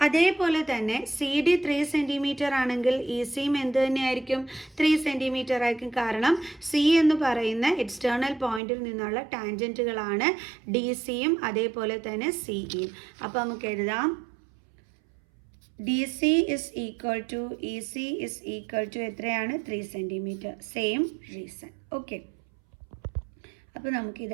അതേപോലെ തന്നെ സി ഡി 3 cm ആണെങ്കിൽ ഇ സിയും എന്ത് തന്നെയായിരിക്കും? 3 cm ആയിരിക്കും. കാരണം സി എന്ന് പറയുന്ന എക്സ്റ്റേണൽ പോയിന്റിൽ നിന്നുള്ള ടാൻജൻറ്റുകളാണ് ഡി സിയും അതേപോലെ തന്നെ സി ഇയും. അപ്പോൾ നമുക്ക് എഴുതാം D C is equal to E C is equal to എത്രയാണ്? 3 cm. Same reason. ഓക്കെ, അപ്പോൾ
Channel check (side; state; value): left; drops out; at 8.6 s